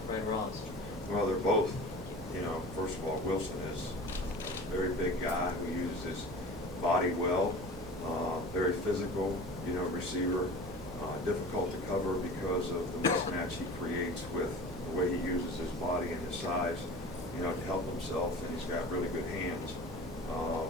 Fred Ross? Well, they're both, you know, first of all, Wilson is a very big guy who uses his body well, very physical, you know, receiver, difficult to cover because of the mismatch he creates with the way he uses his body and his size, you know, to help himself, and he's got really good hands.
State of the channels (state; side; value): noise; right; hum, 15 dB below the sound